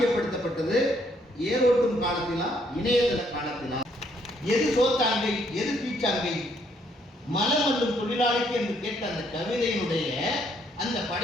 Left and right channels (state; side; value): normal; both; correlation 0.69